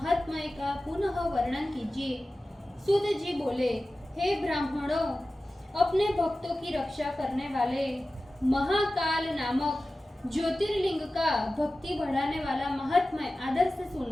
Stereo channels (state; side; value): normal; both; correlation 0.95